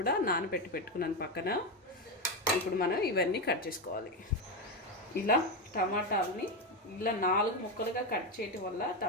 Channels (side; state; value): both; normal; correlation 0.12